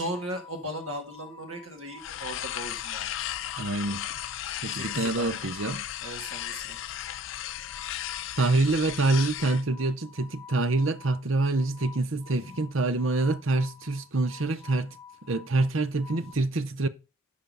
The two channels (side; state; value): both; normal; correlation 0.59